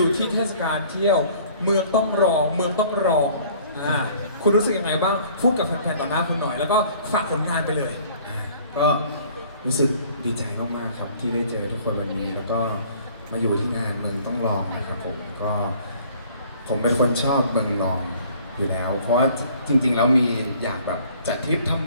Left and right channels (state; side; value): inverted; both; correlation -0.54